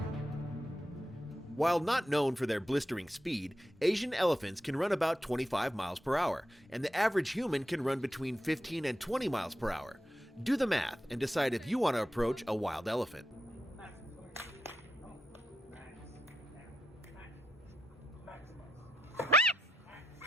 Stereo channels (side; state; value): both; normal; correlation 0.85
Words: While not known for their blistering speed, Asian elephants can run about 25 miles per hour, and the average human can run between 15 and 20 miles per hour. Do the math and decide if you want to approach a wild elephant.